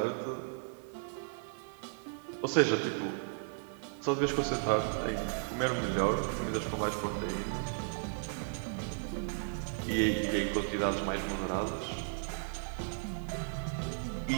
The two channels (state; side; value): silent; left; 54 dB below the other